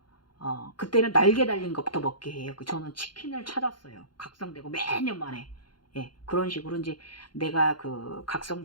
그때는 날개 달린 것부터 먹게 해요. 저는 치킨을 찾았어요. 각성되고 매년 만에. 그런 식으로 이제 내가 그 각성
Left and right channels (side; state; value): right; late; 0.71 ms